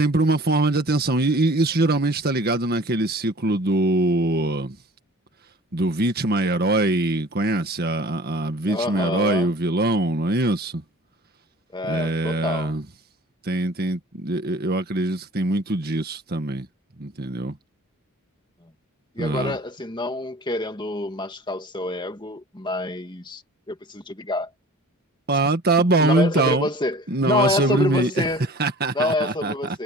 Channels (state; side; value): normal; both; correlation 0.46